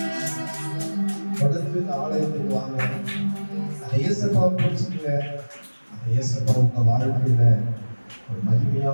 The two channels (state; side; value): inverted; both; correlation -1.00